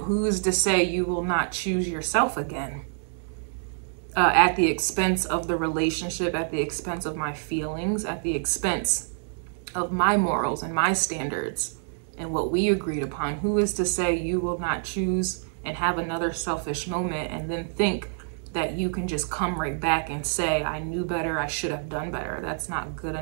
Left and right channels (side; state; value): left; silent; digital silence